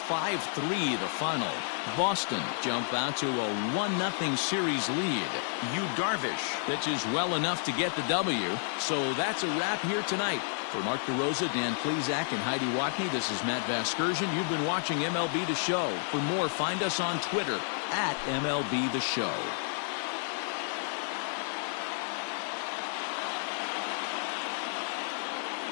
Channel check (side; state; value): right; silent; digital silence